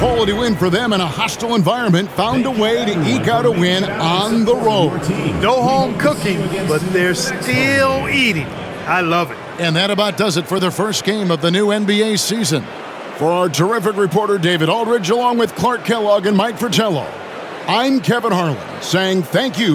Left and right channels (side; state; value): both; identical; correlation 1.00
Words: win for them in a hostile environment, found a way to eke out a win on the road. No home cooking, but they're still eating. I love it. And that about does it for the first game of the new NBA season. For our terrific reporter David Aldridge, along with Clark Kellogg and Mike Fratello, I'm Kevin Harlan saying thank